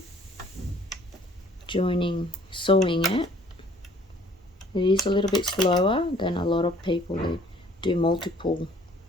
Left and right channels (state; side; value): normal; both; correlation 0.56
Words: sewing it. It is a little bit slower than a lot of people who do multiple